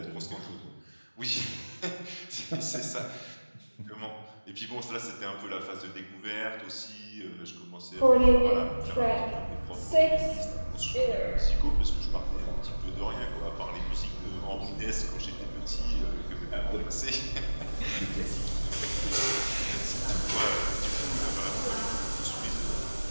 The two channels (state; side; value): inverted; both; correlation -1.00